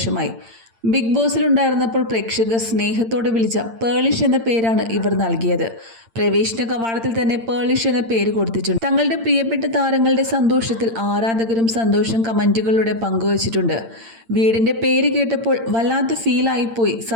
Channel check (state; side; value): late; left; 8.8 ms